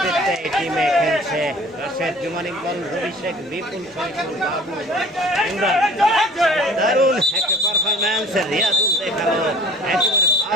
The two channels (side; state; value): both; normal; correlation 0.48